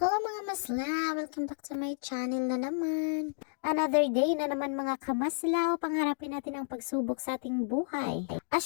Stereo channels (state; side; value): silent; right; digital silence